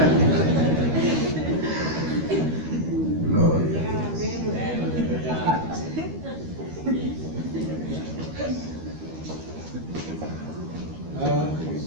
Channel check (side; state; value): left; late; 13 ms